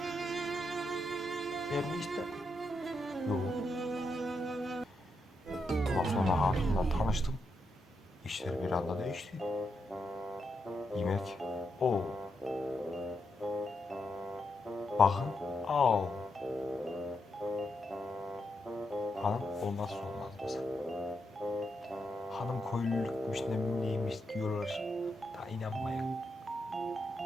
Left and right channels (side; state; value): both; normal; correlation 0.83